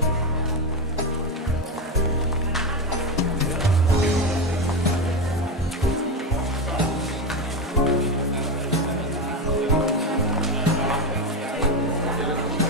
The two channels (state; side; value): normal; both; correlation 0.14